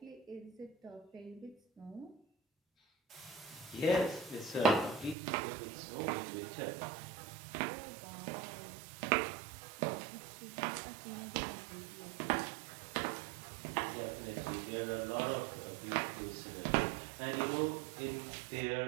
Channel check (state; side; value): drops out; left; at 5.2 s